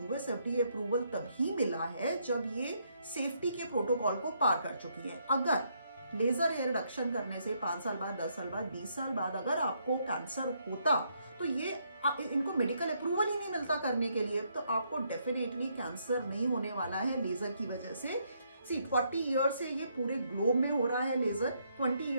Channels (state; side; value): inverted; both; correlation -0.74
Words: FDA अप्रूवल तभी मिला है जब ये सेफ्टी के प्रोटोकॉल को पार कर चुकी है। अगर लेजर हेयर रिडक्शन करने से 5 साल बाद, 10 साल बाद, 20 साल बाद अगर आपको कैंसर होता तो ये इनको मेडिकल अप्रूवल ही नहीं मिलता करने के लिए, तो आपको डेफिनेटली कैंसर नहीं होने वाला है लेजर की वजह से। 40 ईयर से ये पूरे ग्लोब में हो रहा है लेजर, 20